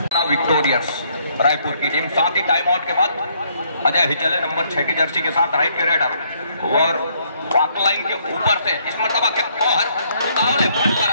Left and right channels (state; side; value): inverted; both; correlation -0.69